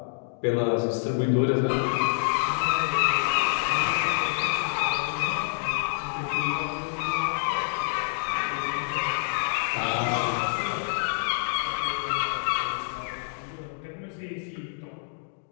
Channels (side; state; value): right; silent; digital silence